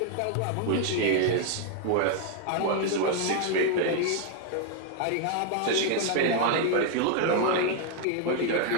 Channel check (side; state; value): both; different; correlation 0.00